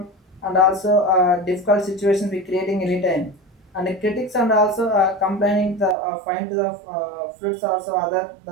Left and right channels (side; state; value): left; drops out; at 6.0 s